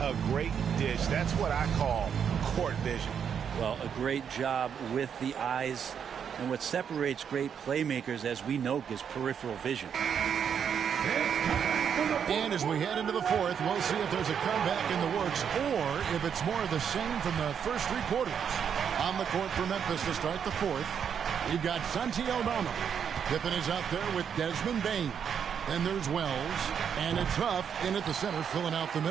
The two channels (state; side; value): quieter; left; 7.7 dB